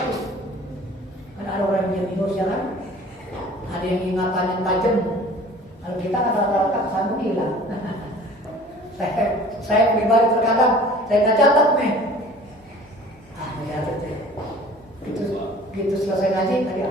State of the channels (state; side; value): normal; both; correlation 0.47